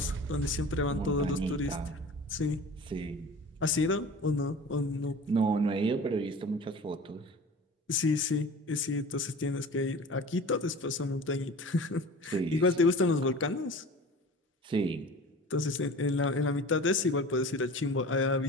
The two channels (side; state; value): both; normal; correlation 0.39